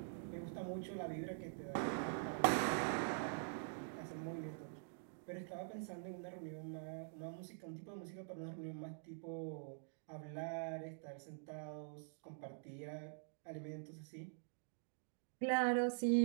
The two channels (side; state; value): left; silent; digital silence